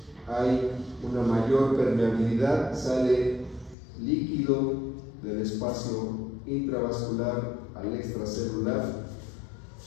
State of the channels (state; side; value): drops out; right; at 3.8 s